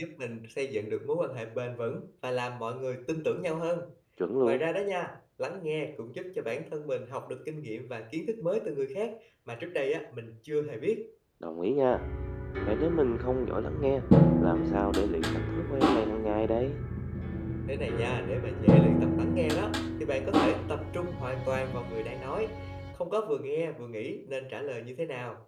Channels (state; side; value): identical; both; correlation 1.00